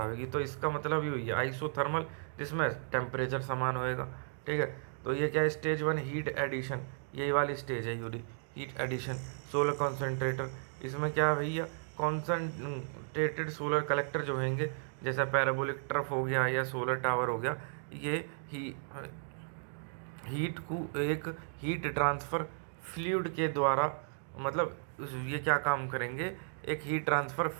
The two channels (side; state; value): left; silent; digital silence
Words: होगी। तो इसका मतलब ये हुई है आइसोथर्मल, जिसमें टेम्परेचर समान होएगा, ठीक है। तो ये क्या है, स्टेज 1 हीट एडिशन, यही वाली स्टेज है यूरी हीट एडिशन। सोलर कॉन्सेंट्रेटर, इसमें क्या है भैया, कॉन्सेंट्रेटेड सोलर कलेक्टर जो होंगे, जैसा पैराबोलिक ट्रफ हो गया या सोलर टावर हो गया, ये हीट को एक हीट ट्रांसफ़र फ्लूइड के द्वारा, मतलब ये क्या काम करेंगे, एक हीट ट्रांसफ़र